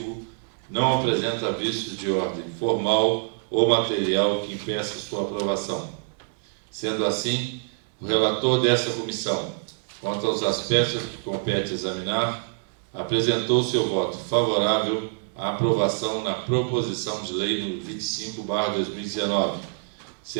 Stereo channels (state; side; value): silent; left; 61 dB below the other